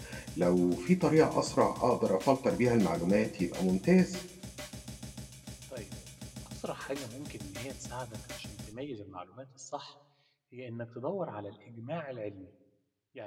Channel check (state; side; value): identical; both; correlation 1.00